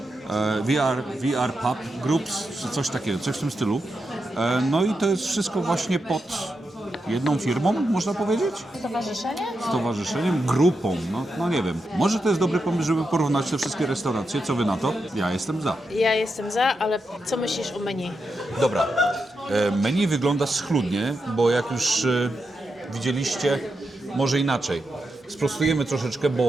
VR Pub Groups, czy coś takiego, coś w tym stylu. No i to jest wszystko właśnie pod jedną firmą, można powiedzieć? Stowarzyszenie? Stowarzyszeniem, grupą, no nie wiem. Może to jest dobry pomysł, żeby porównać te wszystkie restauracje. Co wy na to? Ja jestem za. Ja jestem za, ale co myślisz o menu? Dobra. Menu wygląda schludnie, bo jak już widzieliście, może inaczej. Sprostujemy troszeczkę,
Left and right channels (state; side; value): normal; both; correlation 0.87